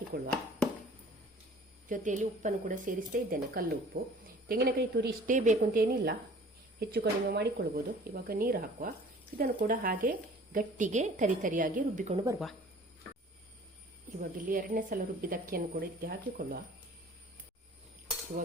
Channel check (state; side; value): normal; both; correlation 0.49